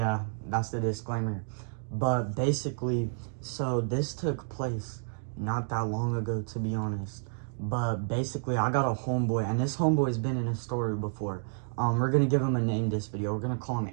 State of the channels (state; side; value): silent; left; digital silence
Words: that's the disclaimer. But basically, so this took place not that long ago, to be honest. But basically, I got a homeboy, and this homeboy's been in a story before. We're gonna give him a name this video. We're gonna call him